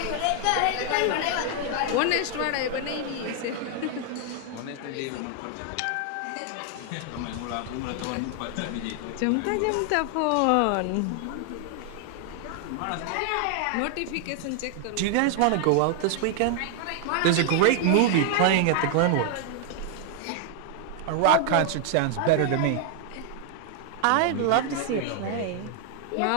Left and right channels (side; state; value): both; different; correlation 0.00